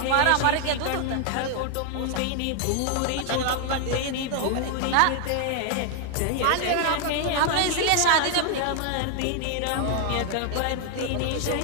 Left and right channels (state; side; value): different; both; correlation 0.00